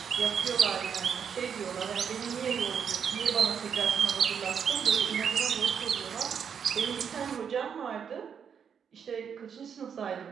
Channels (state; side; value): quieter; left; 7.3 dB